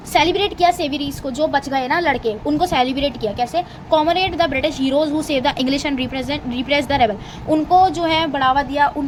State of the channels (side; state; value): both; identical; correlation 1.00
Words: सेलिब्रेट किया सेविरीज को, जो बच गए ना लड़के, उनको सेलिब्रेट किया कैसे, comrade the British heroes who save the English and repress the rebel. उनको जो है बढ़ावा दिया,